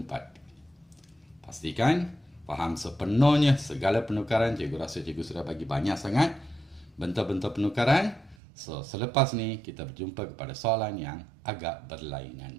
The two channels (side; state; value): left; drops out; at 8.3 s